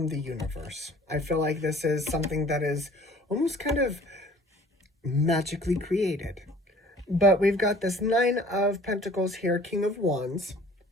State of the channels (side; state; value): both; normal; correlation 0.50